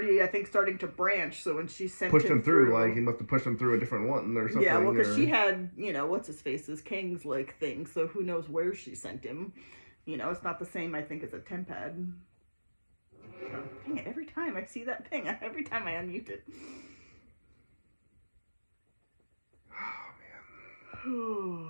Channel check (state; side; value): inverted; both; correlation -1.00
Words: I think, starting to branch. So when she sent him through, like he must have pushed him through a different one or something. Yeah, well, because she had, you know, what's his face's Kang's like thing. So who knows where she sent him? You know, it's not the same. I think as a tempad. Dang it! Every time I see that thing, every time I unmute it.